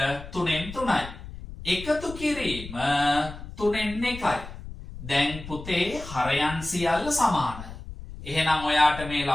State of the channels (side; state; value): left; noise; rumble, 12 dB below the sound